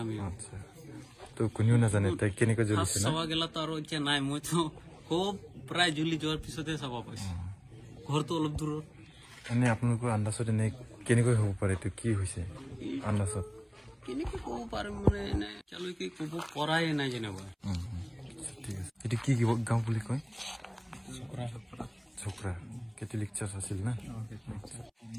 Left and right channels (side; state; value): both; identical; correlation 1.00